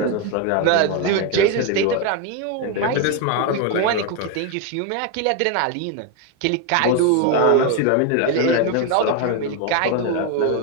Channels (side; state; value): both; different; correlation 0.02